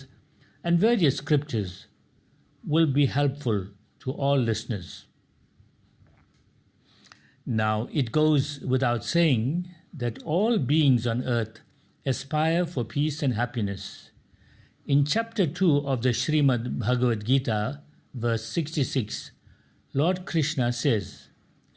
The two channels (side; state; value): both; identical; correlation 1.00